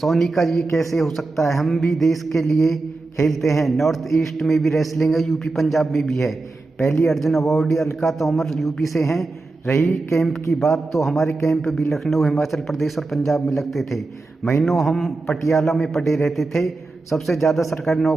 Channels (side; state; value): left; quieter; 3.4 dB